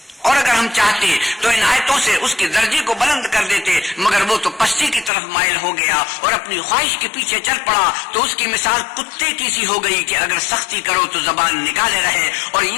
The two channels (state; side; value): drops out; right; at 5.1 s